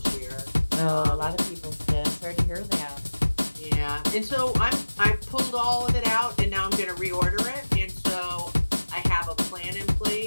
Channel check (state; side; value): inverted; both; correlation -1.00